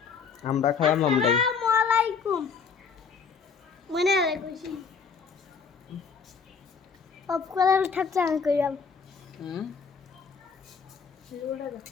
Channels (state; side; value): quieter; right; 5.8 dB